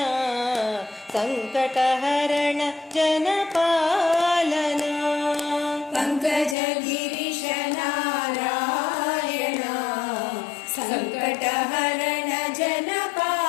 ಸಂಕಟಹರಣ ಜನಪಾಲನ. ಪಂಕಜ ಗಿರೀಶ ನಾರಾಯಣ ಸಂಕಟಹರಣ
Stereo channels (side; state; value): right; drops out; at 6.6 s